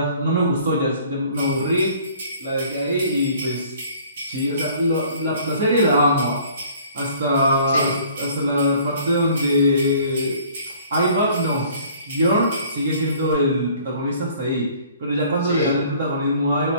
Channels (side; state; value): both; inverted; correlation -0.54